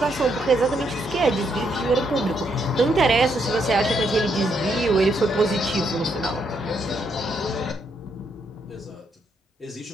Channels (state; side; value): normal; both; correlation 0.76